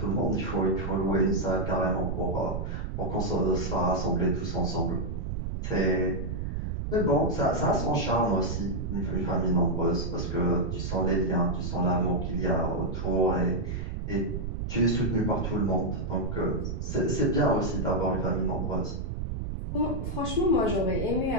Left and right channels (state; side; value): noise; right; rumble, 4 dB below the sound